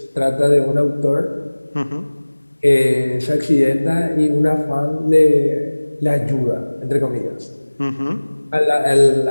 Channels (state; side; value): inverted; both; correlation -1.00